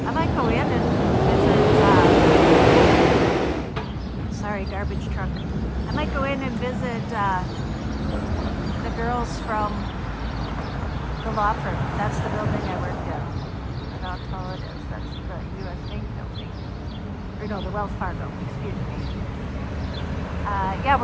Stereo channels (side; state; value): both; identical; correlation 1.00